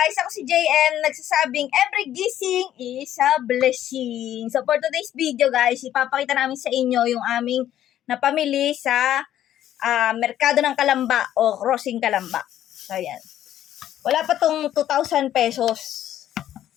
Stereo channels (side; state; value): right; quieter; 11.8 dB